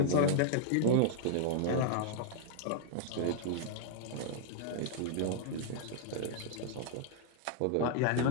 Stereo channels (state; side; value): different; both; correlation -0.01